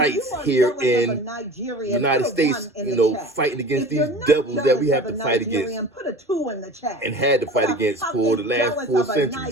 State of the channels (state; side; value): normal; both; correlation 0.38